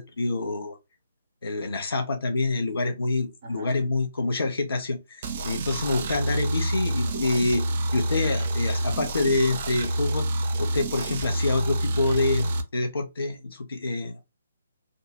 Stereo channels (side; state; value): both; inverted; correlation -0.84